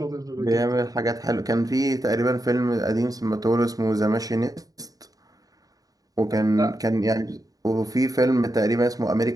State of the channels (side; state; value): left; late; 0.18 ms